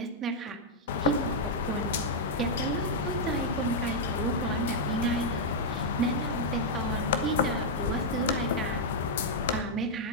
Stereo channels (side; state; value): both; normal; correlation -0.04